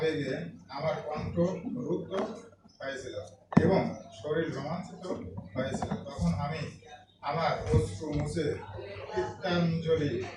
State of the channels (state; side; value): identical; both; correlation 1.00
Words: আমার কণ্ঠ রুদ্ধ হয়েছিল এবং শরীর রোমাঞ্চিত হয়েছিল। তখন আমি আমার অশ্রু মুছে কীর্তাঞ্জলি